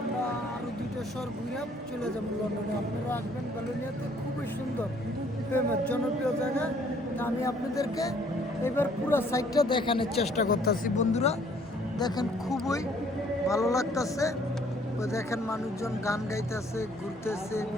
আরও 2টা শহর ঘুরে চলে যাবো লন্ডনে। আপনারা আসবেন বেলোনিয়াতে, খুবই সুন্দর ফেমাস জনপ্রিয় জায়গা। তা আমি আপনাদেরকে এবার পুরো সাইডটা দেখানোর চেষ্টা করতেছি বন্ধুরা। দেখেন খুবই ভালো লাগতেছে। ওই দেখেন মানুষজন গান গাইতেছে, ঘুরতেছে,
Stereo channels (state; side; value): normal; both; correlation 0.61